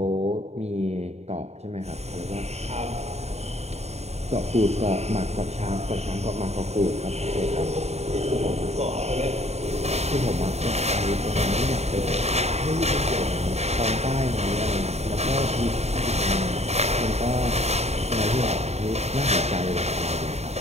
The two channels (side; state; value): left; late; 0.31 ms